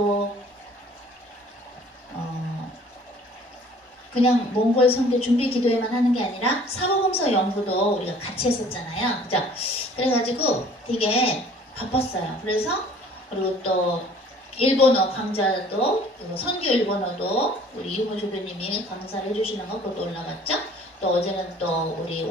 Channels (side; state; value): both; normal; correlation 0.52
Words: 그냥 몽골 선교 준비 기도회만 하는 게 아니라 사복음서 연구도 우리가 같이 했었잖아요. 그죠? 그래가지고 되게 바빴어요. 그래서 그리고 또 일본어 강좌도 선교 일본어도 우리 이용호 조교님이 강사를 해주시는 거 그것도 올라갔죠. 또 어제는 또 우리